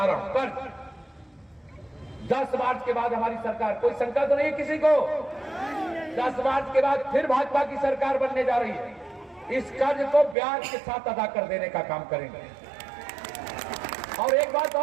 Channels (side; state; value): left; drops out; at 10.4 s